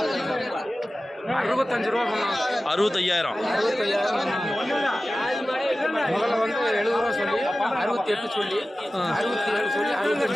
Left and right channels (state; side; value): normal; both; correlation 0.95